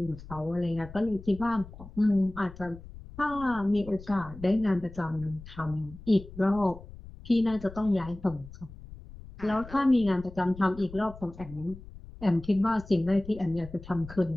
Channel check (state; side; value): noise; left; rumble, 16 dB below the sound